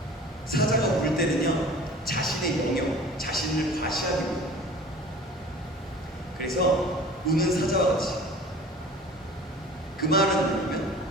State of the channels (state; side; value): normal; both; correlation 0.44